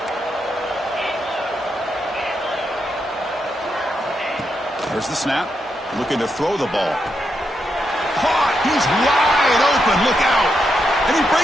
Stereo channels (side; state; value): both; normal; correlation 0.83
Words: There's the snap. Looking to throw the ball. Caught. He's wide open. Look out. And he